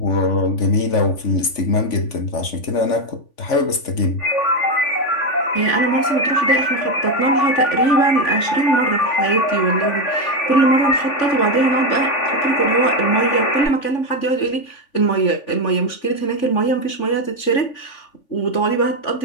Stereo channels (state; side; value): late; right; 3.5 ms